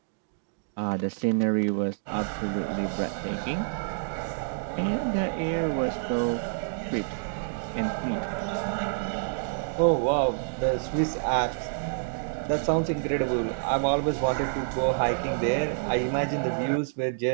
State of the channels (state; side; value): silent; left; digital silence